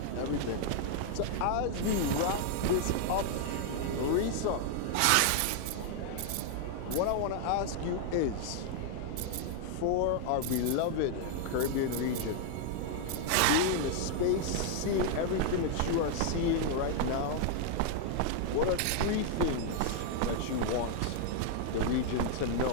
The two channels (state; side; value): different; both; correlation 0.00